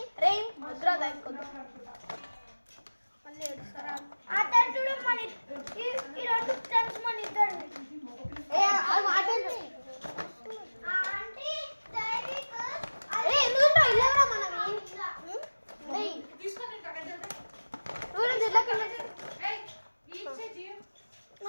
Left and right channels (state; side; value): inverted; both; correlation -1.00